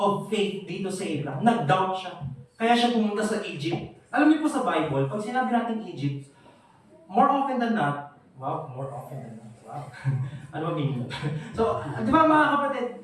faith dito sa Abraham. Nag-doubt siya. Kaya siya pumunta sa Egypt. Alam niyo po sa Bible, pag sinabi natin Egypt, more often than not, wow. Ano ba meaning? So, di ba mga kapatid,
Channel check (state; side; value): identical; both; correlation 1.00